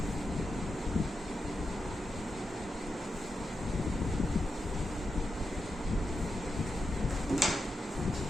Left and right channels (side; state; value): both; normal; correlation 0.87